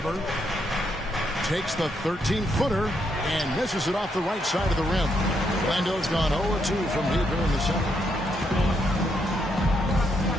Takes the 13-footer and misses it off the right side of the rim. Orlando's gone 0-2 from deep here in the second.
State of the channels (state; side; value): normal; both; correlation 0.77